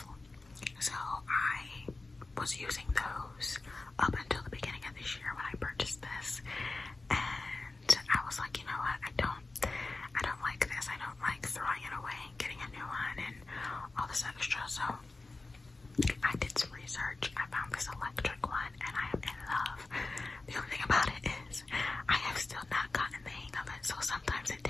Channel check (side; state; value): right; quieter; 3.4 dB